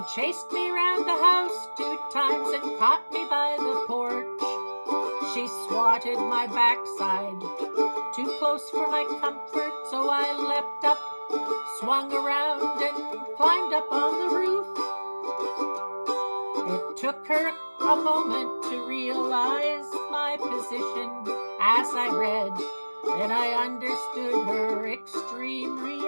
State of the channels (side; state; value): both; inverted; correlation -1.00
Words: chased me round the house 2 times and caught me by the porch. She swatted my backside, too close for my comfort, so I leapt up, swung around, and climbed up on the roof. It took her a moment to realize my position as I read, and I understood her extreme